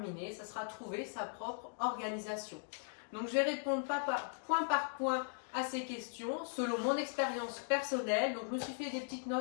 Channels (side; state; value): right; silent; digital silence